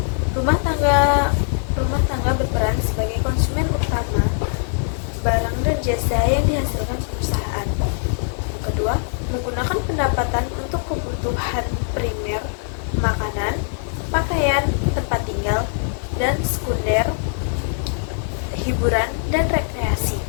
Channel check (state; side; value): silent; right; digital silence